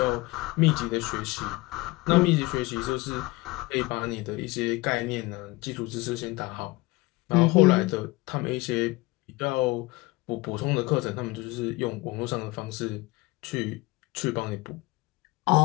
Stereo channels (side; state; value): right; quieter; 22.1 dB